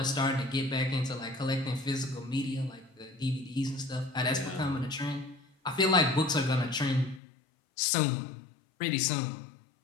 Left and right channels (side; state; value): right; drops out; at 7.2 s